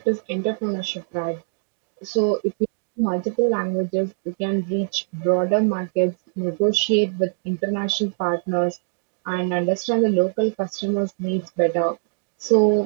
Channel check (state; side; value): silent; left; digital silence